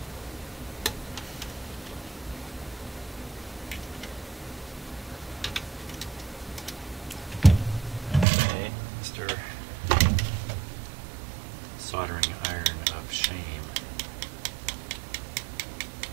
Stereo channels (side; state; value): left; drops out; at 8.2 s